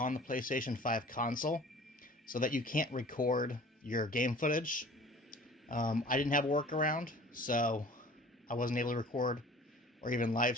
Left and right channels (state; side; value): normal; both; correlation 0.46